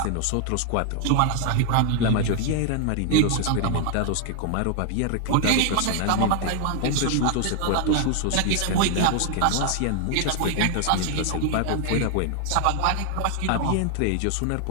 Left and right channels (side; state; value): both; different; correlation 0.00